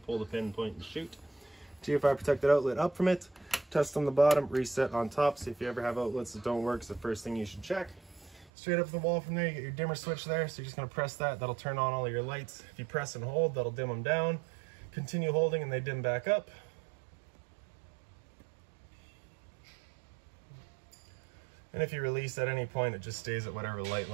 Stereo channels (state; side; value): drops out; left; at 8.5 s